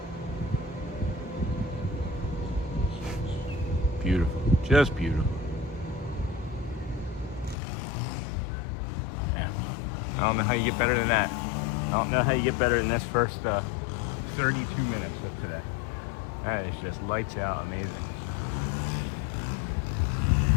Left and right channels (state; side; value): drops out; right; at 7.6 s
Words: Beautiful, just beautiful. Yeah, I don't know how you get better than that. I don't know how you get better than this first 32 minutes of today. That is just lights out amazing.